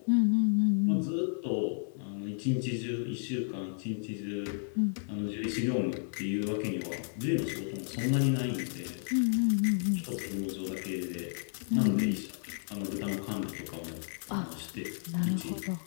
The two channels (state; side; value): silent; right; 56 dB below the other